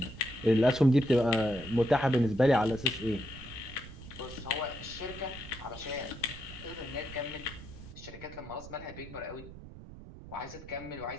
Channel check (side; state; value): right; noise; rumble, 15 dB below the sound